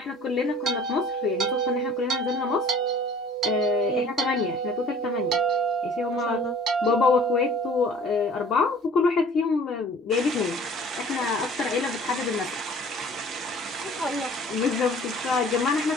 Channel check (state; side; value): normal; both; correlation 0.50